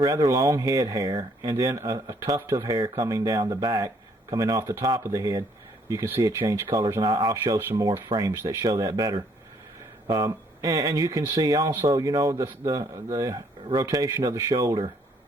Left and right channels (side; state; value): both; normal; correlation 0.66